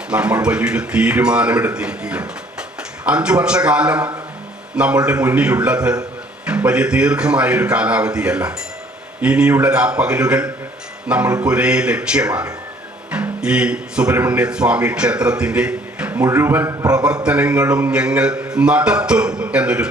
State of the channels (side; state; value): both; normal; correlation 0.59